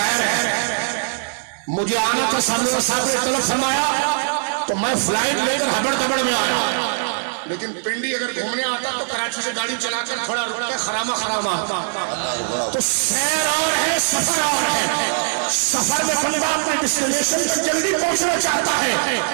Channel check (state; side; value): silent; left; digital silence